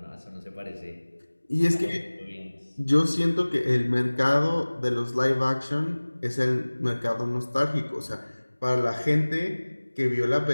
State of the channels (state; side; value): inverted; both; correlation -1.00